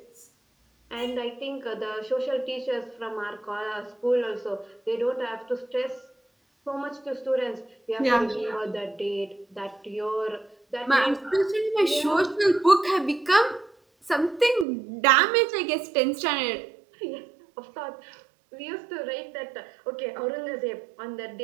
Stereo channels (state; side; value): drops out; left; at 14.7 s